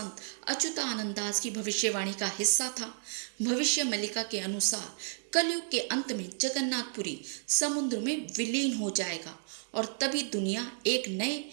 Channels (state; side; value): silent; left; digital silence